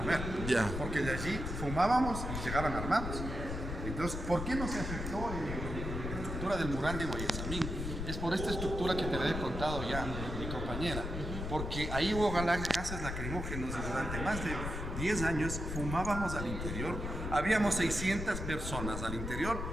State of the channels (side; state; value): left; noise; rumble, 5 dB below the sound